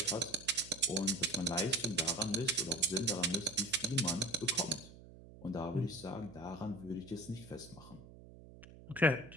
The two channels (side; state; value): right; noise; hum, 18 dB below the sound